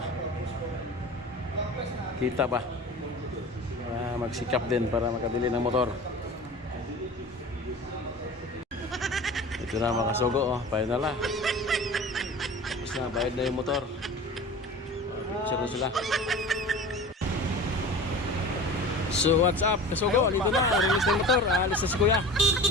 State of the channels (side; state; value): both; normal; correlation 0.37